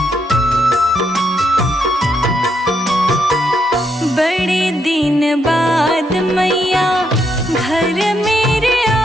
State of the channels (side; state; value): both; normal; correlation 0.78